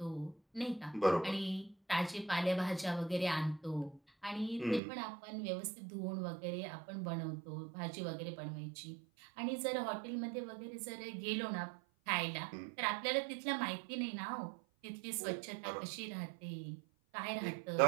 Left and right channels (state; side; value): drops out; left; at 4.8 s